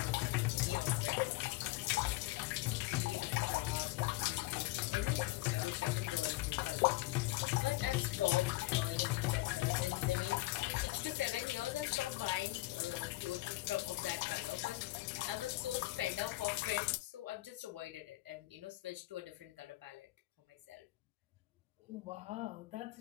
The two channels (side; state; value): right; quieter; 19.4 dB